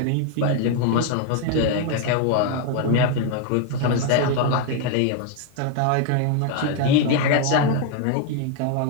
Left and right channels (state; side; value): different; both; correlation 0.01